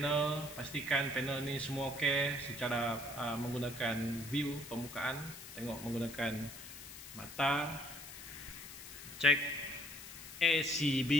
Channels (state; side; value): noise; left; hiss, 13 dB below the sound